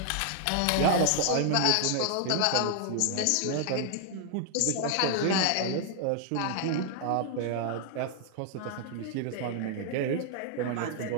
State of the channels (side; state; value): both; different; correlation 0.00